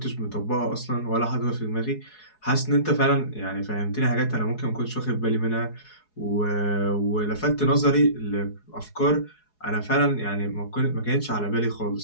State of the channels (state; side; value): late; right; 4.7 ms